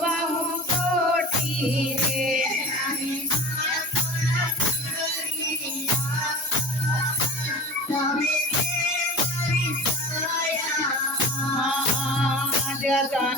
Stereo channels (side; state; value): both; normal; correlation 0.36